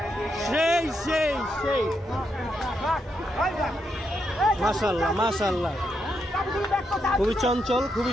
সেই সেই সেই মাশাআল্লাহ মাশাআল্লাহ খুবই চঞ্চল খুবই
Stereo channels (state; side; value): normal; both; correlation 0.81